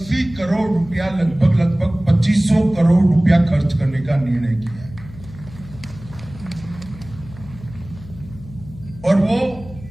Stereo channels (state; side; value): noise; left; hum, 17 dB below the sound